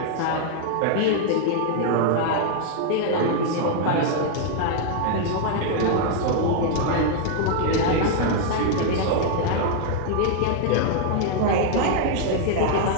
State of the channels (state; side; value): different; both; correlation 0.00